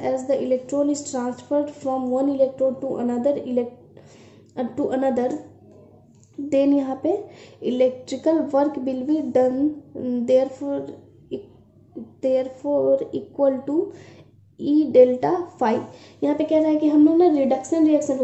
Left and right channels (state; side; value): identical; both; correlation 1.00